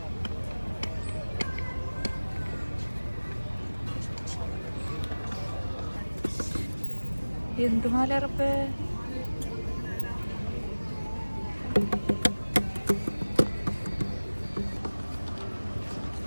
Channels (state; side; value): inverted; both; correlation -1.00